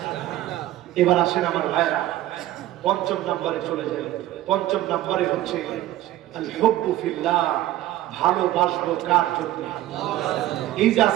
এবার আসেন আমার ভাইরা পঞ্চম নম্বরে চলে যায়। পঞ্চম নম্বরে হচ্ছে আল হুব্বু ফিল্লাহ, ভালোবাসবো কার জন্য? এই যে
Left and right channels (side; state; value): left; quieter; 14.5 dB